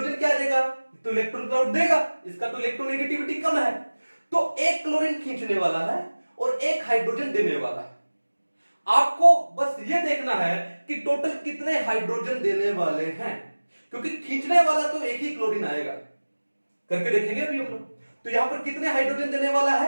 क्या देगा, तो इलेक्ट्रॉन क्लाउड देगा, इसका तो इलेक्ट्रोनेगेटिविटी कम है, तो 1 क्लोरीन खींचने वाला है और 1 हाइड्रोजन देने वाला है। आपको बस ये देखना है कि टोटल कितने हाइड्रोजन देने वाले हैं, क्योंकि खींचने वाला तो 1 ही क्लोरीन आएगा। करके देखेंगे अभी हम लोग। तो यहां पर कितने हाइड्रोजन देने वाला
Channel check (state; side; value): inverted; both; correlation -1.00